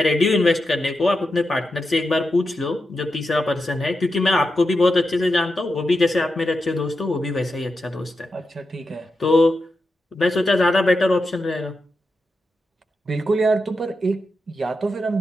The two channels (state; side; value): normal; both; correlation 0.88